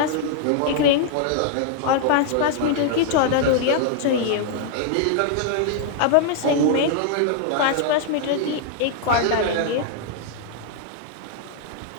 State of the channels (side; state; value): both; different; correlation 0.00